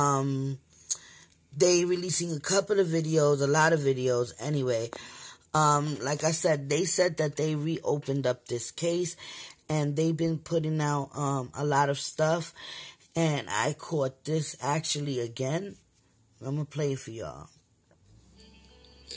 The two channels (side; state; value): both; identical; correlation 1.00